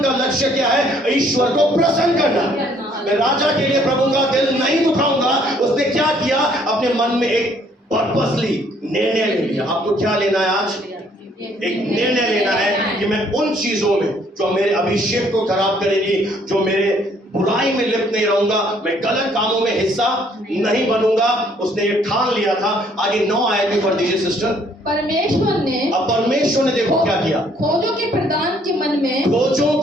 का लक्ष्य क्या है? ईश्वर को प्रसन्न करना। मैं राजा के लिए प्रभु का दिल नहीं दुखाऊंगा। उसने क्या किया, अपने मन में एक पर्पसली निर्णय ले लिया। आपको क्या लेना है आज? एक निर्णय लेना है कि मैं उन चीजों में जो मेरे अभिषेक को खराब करेगी, जो मेरे बुराई में लिप्त नहीं रहूंगा, मैं गलत कामों में हिस्सा नहीं बनूंगा। उसने ये ठान लिया था। आगे 9 आयत भी पढ़ दीजिए सिस्टर। परमेश्वर ने अब परमेश्वर ने देखो क्या किया, खोजों के प्रधान के मन में, खोजों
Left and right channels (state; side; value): normal; both; correlation 0.64